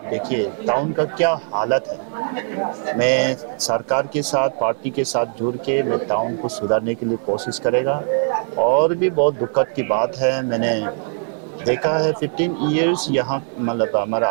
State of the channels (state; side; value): silent; left; 58 dB below the other